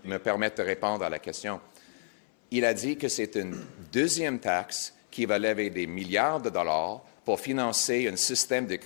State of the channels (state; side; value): silent; right; 55 dB below the other